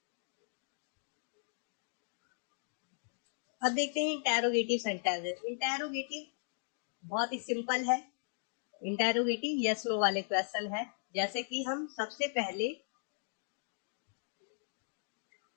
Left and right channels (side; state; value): right; silent; digital silence